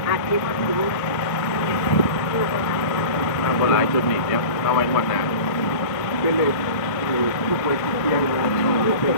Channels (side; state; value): right; late; 1.6 ms